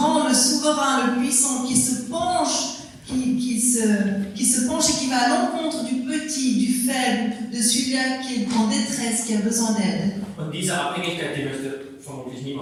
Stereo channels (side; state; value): both; identical; correlation 1.00